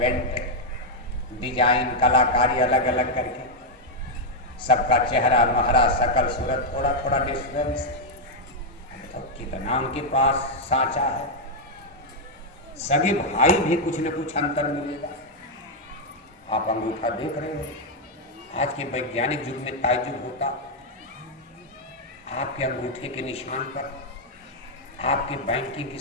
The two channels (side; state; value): both; normal; correlation -0.01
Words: डिजाइन कलाकारी अलग अलग करके सबका चेहरा महरा सकल सूरत थोड़ा थोड़ा डिफरेंस। तो कितना उनके पास सांचा है। सगे भाई भी कुछ न कुछ अंतर मिलेगा। आप अंगूठा देख रहे हो, आज के वैज्ञानिक युग में ताज्जुब होता। आपके अंगूठे के निशान पर आपके बैंकिंग की